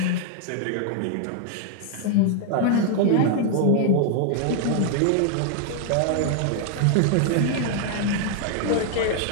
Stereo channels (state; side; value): different; both; correlation 0.00